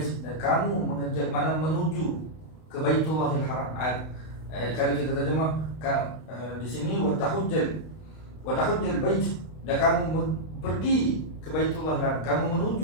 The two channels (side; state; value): right; late; 32 ms